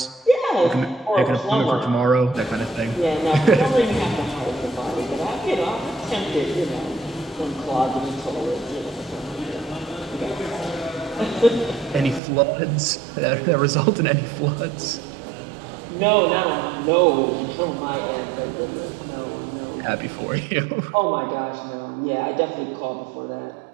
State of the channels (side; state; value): left; drops out; at 12.2 s